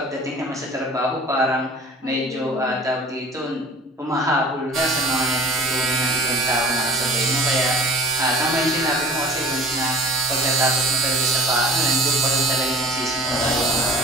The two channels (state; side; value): normal; both; correlation 0.43